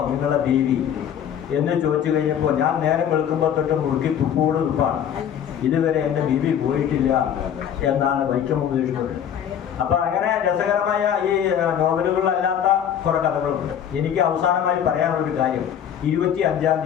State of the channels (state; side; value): quieter; right; 9.2 dB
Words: നിങ്ങളുടെ ബീവി എന്ന് ചോദിച്ചു കഴിഞ്ഞപ്പോൾ, ഞാൻ നേരം വെളുക്കുമ്പോൾ തൊട്ട് മുറുക്കി തുപ്പോട് തുപ്പാണ്, ഇതുവരെ എൻ്റെ ബീവി പോയിട്ടില്ല എന്നാണ് വൈക്കം മുഹമ്മദ് ബഷീർ. അപ്പോൾ അങ്ങനെ രസകരമായ ഈ നോവലുകളിലല്ലാത്ത കുറേ കഥകളുണ്ട്. എനിക്ക് അവസാനമായി പറയാനുള്ളൊരു കാര്യം, 25-ാം